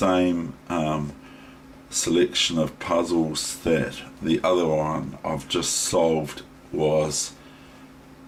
selection of puzzles that the other one I've just solved was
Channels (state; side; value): identical; both; correlation 1.00